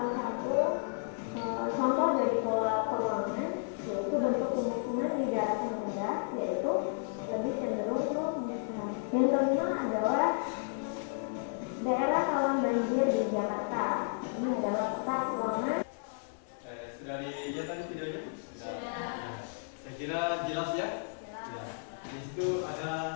satu contoh dari pola peruangan, yaitu bentuk pemukiman di daratan rendah, yaitu lebih cenderung ke musnah. Yang kelima adalah daerah rawan banjir di Jakarta. Ini adalah peta peruangan. Sudah dilihat tadi videonya? Sudah. Saya kira jelas ya? Jelas. Di situ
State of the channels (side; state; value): right; silent; 56 dB below the other